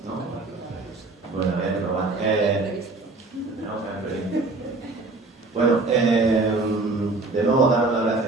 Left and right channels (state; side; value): quieter; left; 3.4 dB